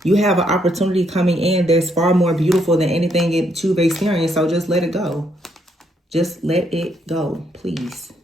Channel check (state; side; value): normal; both; correlation 0.73